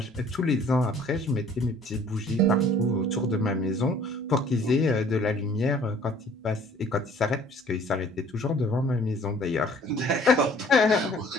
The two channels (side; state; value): both; normal; correlation 0.54